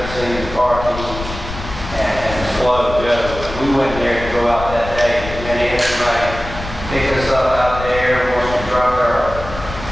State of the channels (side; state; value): left; noise; rumble, 10 dB below the sound